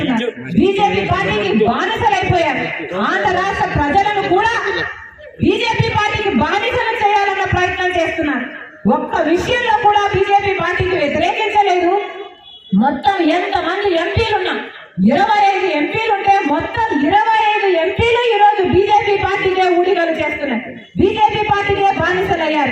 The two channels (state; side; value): identical; both; correlation 1.00